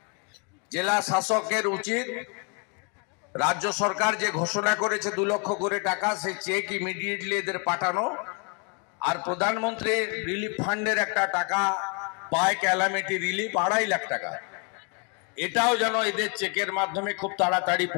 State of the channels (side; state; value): right; quieter; 36.2 dB